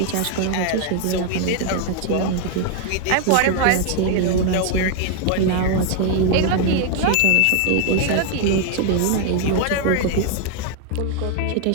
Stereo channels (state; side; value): different; both; correlation 0.00